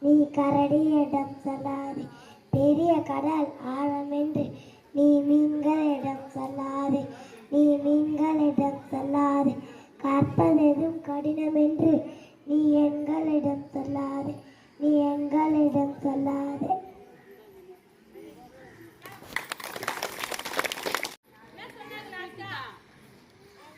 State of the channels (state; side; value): identical; both; correlation 1.00